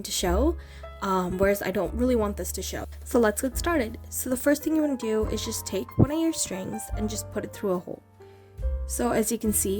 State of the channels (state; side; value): identical; both; correlation 1.00